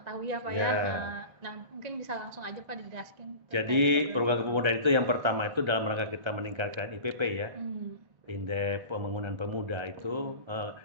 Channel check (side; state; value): left; late; 1.3 ms